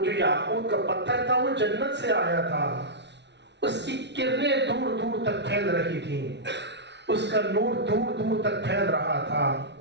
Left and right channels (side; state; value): left; late; 0.51 ms